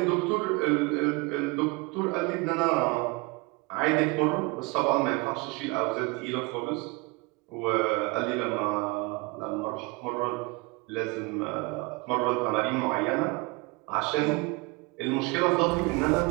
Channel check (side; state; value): left; quieter; 26.2 dB